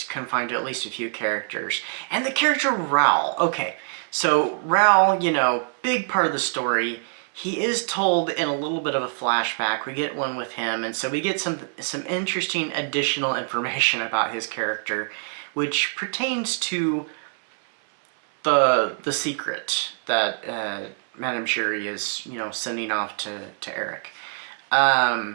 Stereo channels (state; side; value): silent; left; 62 dB below the other